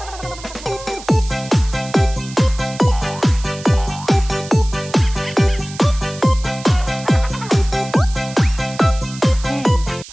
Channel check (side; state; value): right; noise; hiss, 16 dB below the sound